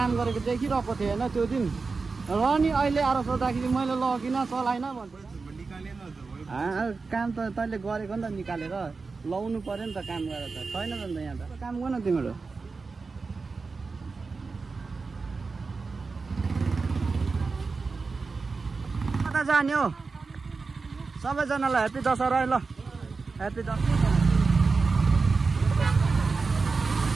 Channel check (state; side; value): quieter; left; 4.3 dB